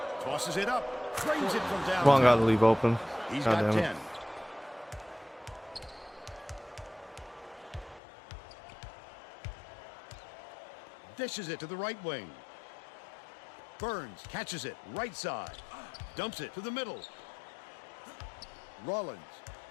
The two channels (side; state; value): right; drops out; at 8.0 s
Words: Tosses it up. Drains it from down. Long got to leave open. He's God got damn 10. it. Dishes it to the right wing. Burns catches it right side. Dumps it to the middle. Rollins.